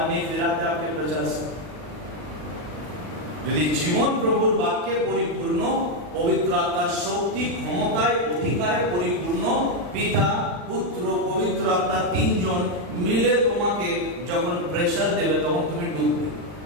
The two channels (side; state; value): left; late; 40 ms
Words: नहीं फिराते आपके प्रचार से। যদি জীবন প্রভুর বাক্যে পরিপূর্ণ, পবিত্র আত্মার শক্তি, ক্ষমতায়, অধিকারে পরিপূর্ণ, পিতা, পুত্র, পবিত্র আত্মা তিনজন মিলে তোমাকে যখন প্রেশার देवे, তখন তুমি डूबবে।